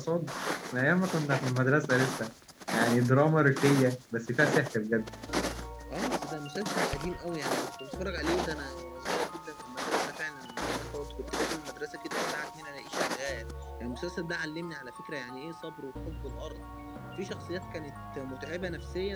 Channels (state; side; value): identical; both; correlation 1.00